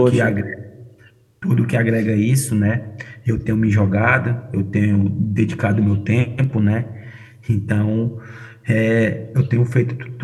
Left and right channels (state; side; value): identical; both; correlation 1.00